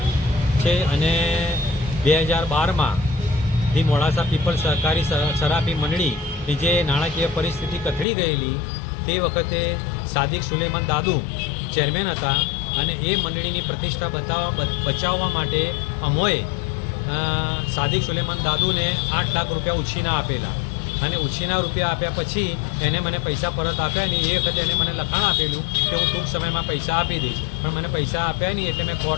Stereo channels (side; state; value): right; drops out; at 8.1 s